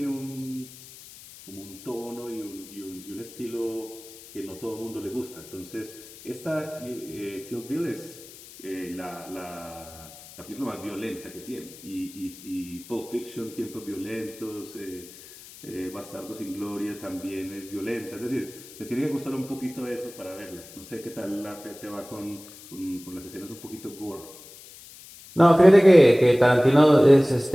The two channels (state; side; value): noise; left; hiss, 18 dB below the sound